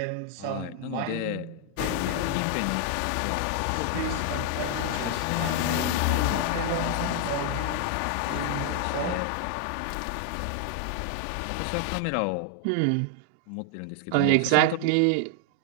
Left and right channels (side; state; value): both; different; correlation 0.00